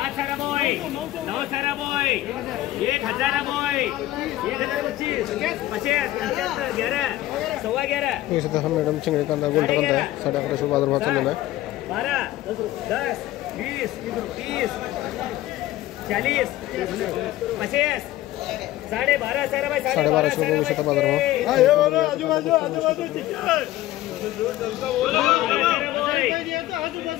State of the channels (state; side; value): quieter; right; 15.3 dB